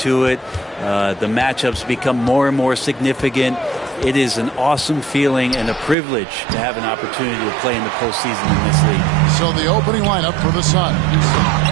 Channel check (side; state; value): left; drops out; at 6.0 s